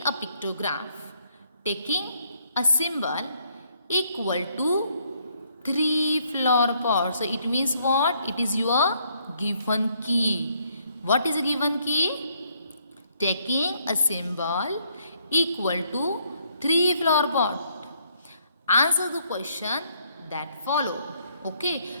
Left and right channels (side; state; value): both; inverted; correlation -0.69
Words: a pictograph taking a symbol equal to 3 flower pots. So it means what? It is your given key. What is a given key? Taking a symbol equal to 3 flower pot. Answer the question that follow.